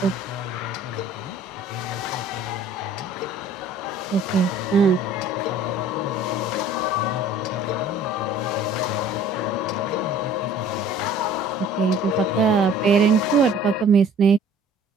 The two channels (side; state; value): both; normal; correlation 0.51